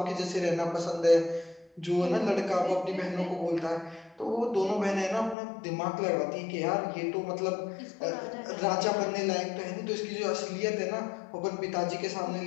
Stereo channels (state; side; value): drops out; right; at 5.4 s